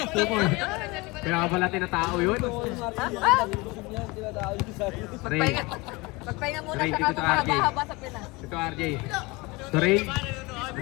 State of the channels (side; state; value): right; quieter; 24.3 dB